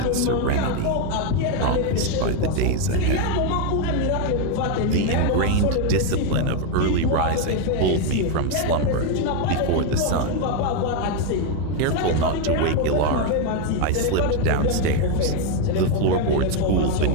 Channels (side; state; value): both; different; correlation 0.02